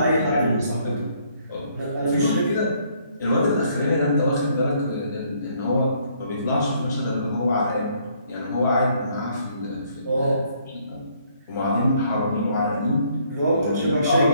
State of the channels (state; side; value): inverted; both; correlation -0.66